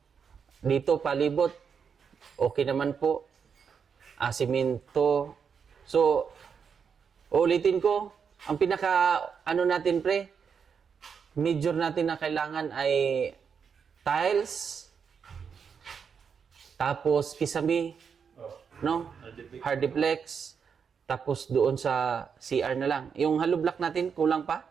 dito palibot, okay naman po. Simento. So, ulitin ko, ang natin pre, major natin na kailangan ay tiles, tapos kisame, no? Hardiplex, tapos doon sa CR na lang. Yung hollow block natin, kulang pa?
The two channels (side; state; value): left; quieter; 6.5 dB